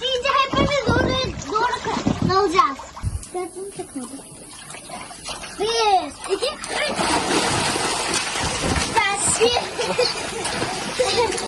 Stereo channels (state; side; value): identical; both; correlation 1.00